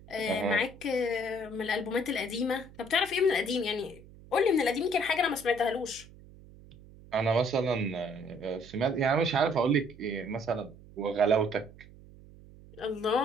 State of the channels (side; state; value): right; noise; hum, 21 dB below the sound